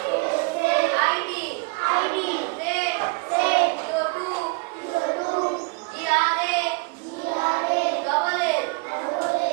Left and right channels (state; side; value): quieter; left; 29.7 dB